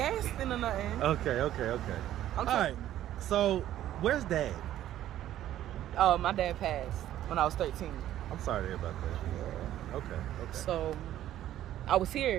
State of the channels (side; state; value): left; quieter; 12.6 dB